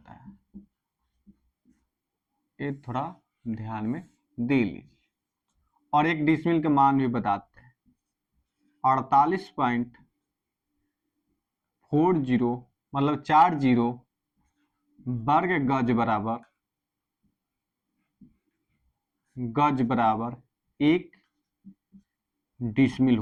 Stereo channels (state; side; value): identical; both; correlation 1.00